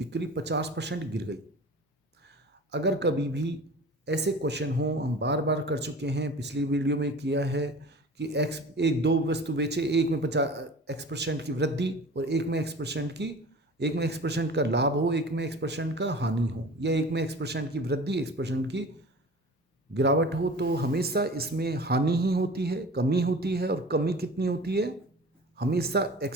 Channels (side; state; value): both; normal; correlation 0.40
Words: 50% गिर गई। अगर कभी भी ऐसे क्वेश्चन हो, हम बार बार कर चुके हैं, पिछली वीडियो में किया है कि एक दो वस्तु बेचे, एक में 50% की वृद्धि और एक में X% का लाभ हो, एक में X% का हानि हो, या एक में X% की वृद्धि X% की गिरावट हो, तो हमेशा इसमें हानि ही होती है, कमी होती है। और कमी कितनी होती है? हमेशा